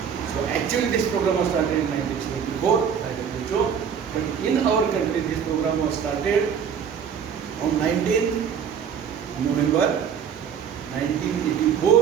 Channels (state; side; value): quieter; left; 7.5 dB